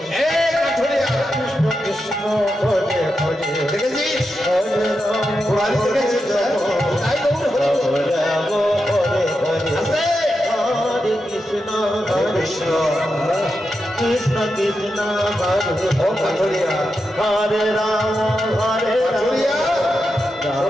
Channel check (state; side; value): normal; both; correlation 0.88